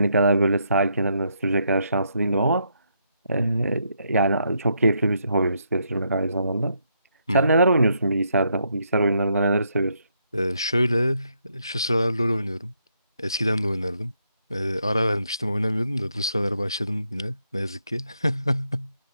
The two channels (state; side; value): inverted; both; correlation -0.76